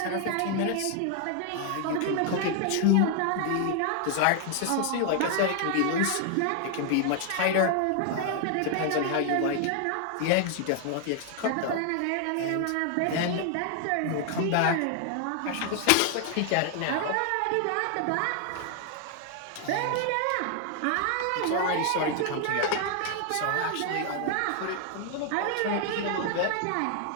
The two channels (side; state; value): both; different; correlation 0.00